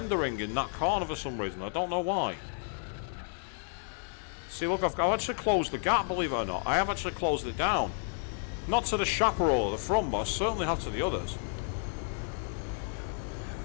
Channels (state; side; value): silent; right; 57 dB below the other